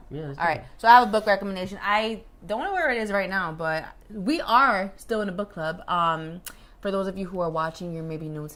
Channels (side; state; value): both; identical; correlation 1.00